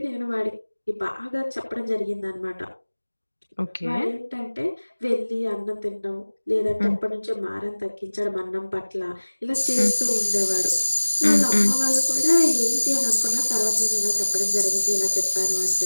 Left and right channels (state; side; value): inverted; both; correlation -1.00